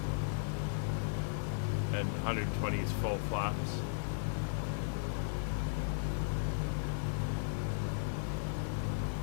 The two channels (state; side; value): silent; right; digital silence